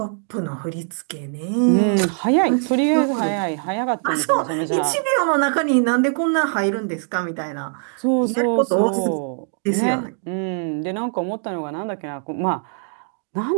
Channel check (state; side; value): silent; left; 56 dB below the other